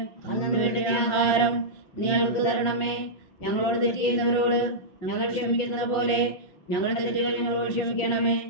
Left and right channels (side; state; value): right; late; 5.7 ms